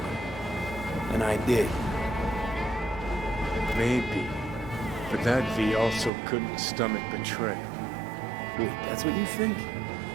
And I did. Maybe. But that V also couldn't stomach betrayal. Wait, that's what you think?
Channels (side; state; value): left; drops out; at 6.1 s